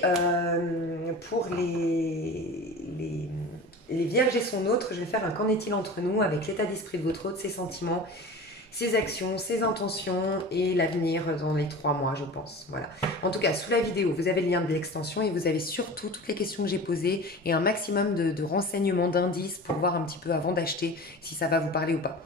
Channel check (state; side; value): normal; both; correlation 0.35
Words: pour les vierges et son autre, je vais faire un qu'en est-il entre nous avec l'état d'esprit de votre autre, ses sentiments, ses actions, ses intentions et l'avenir dans les 3 mois, je pense. Voilà. En tout cas, sous la vidéo, vous avez le lien de l'extension et vous avez surtout toutes les questions que j'ai posées et un maximum de renseignements, d'indices pour voir un petit peu avant d'acheter si ça va vous parler ou pas.